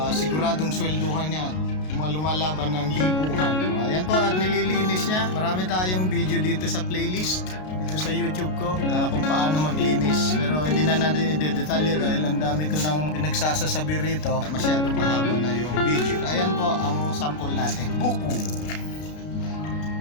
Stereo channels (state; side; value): late; right; 33 ms